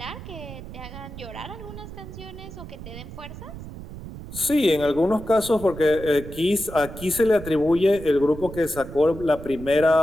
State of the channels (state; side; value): noise; right; rumble, 12 dB below the sound